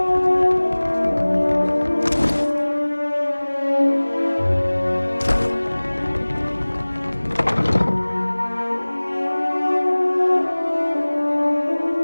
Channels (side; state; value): both; inverted; correlation -1.00